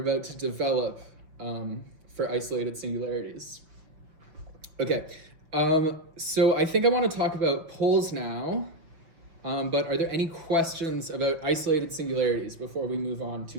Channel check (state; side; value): late; left; 6.1 ms